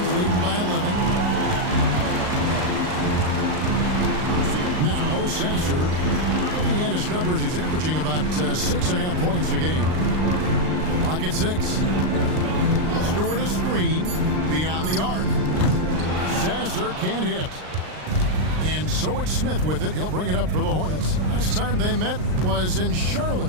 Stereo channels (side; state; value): left; late; 39 ms